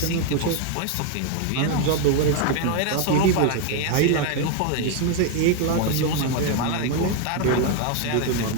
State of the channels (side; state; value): both; different; correlation 0.01